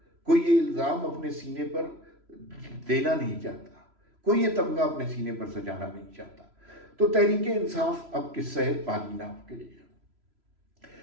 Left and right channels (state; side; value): late; left; 3.0 ms